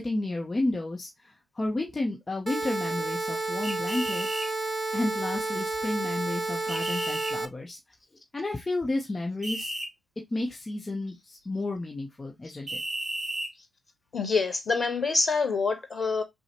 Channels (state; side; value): normal; both; correlation 0.89